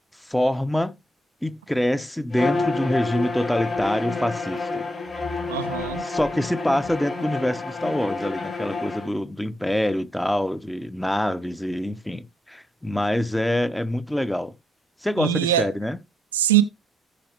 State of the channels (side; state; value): both; normal; correlation 0.77